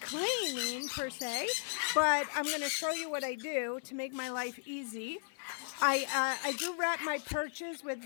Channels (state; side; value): silent; right; 54 dB below the other